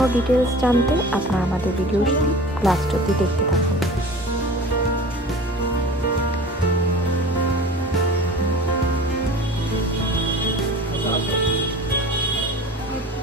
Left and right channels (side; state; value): both; normal; correlation 0.40